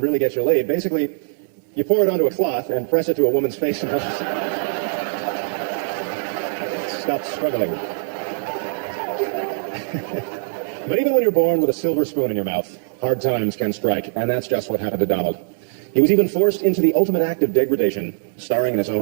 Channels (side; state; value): left; silent; digital silence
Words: really get you laid. Basically, you pour it onto a cloth and press it to a woman's face until she stops swiveling. But even when you're born with a silver spoon in your mouth, hard times can strike, and that's just what happened to Donald. He was even forced into the ultimate act of degradation, starring in his